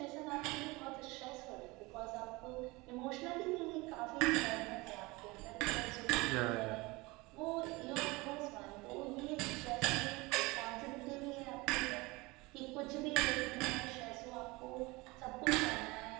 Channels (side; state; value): left; quieter; 23.4 dB